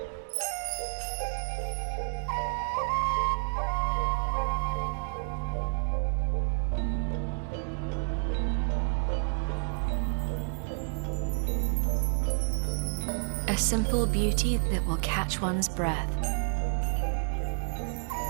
A simple beauty that will catch one's breath.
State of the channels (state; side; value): silent; left; 58 dB below the other